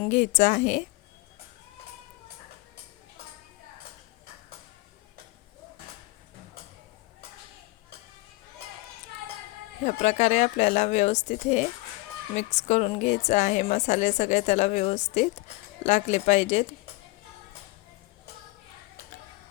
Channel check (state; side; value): quieter; right; 22.4 dB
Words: घ्यायचं आहे। ह्या प्रकारे आपल्याला व्यवस्थित हे मिक्स करून घ्यायचं आहे। मसाले सगळे त्याला व्यवस्थित लागले पाहिजेत।